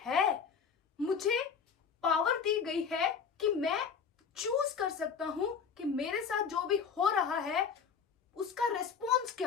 मुझे पावर दी गई है कि मैं चूज कर सकता हूं कि मेरे साथ जो भी हो रहा है उसका रिस्पॉन्स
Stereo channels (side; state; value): right; quieter; 6.4 dB